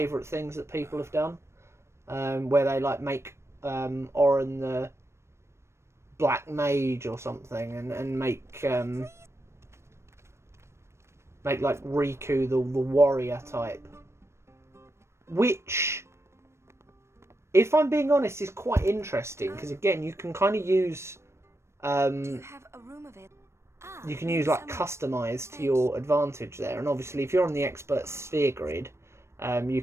things that people have done. Where they like make Oran the Black Mage or something. And make like Riku the warrior type. Which, if I'm being honest, is quite interesting. Because again, you can kind of use... you can use like Customise to your advantage there. And obviously if you're on the expert sphere grid, you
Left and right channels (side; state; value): left; late; 0.13 ms